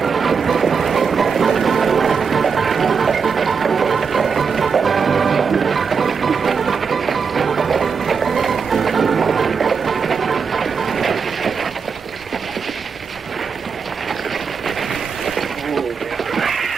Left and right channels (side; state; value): left; quieter; 5.8 dB